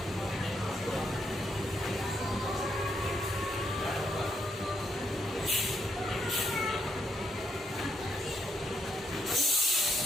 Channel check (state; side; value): normal; both; correlation 0.76